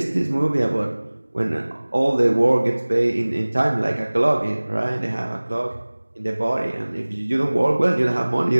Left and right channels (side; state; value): both; inverted; correlation -1.00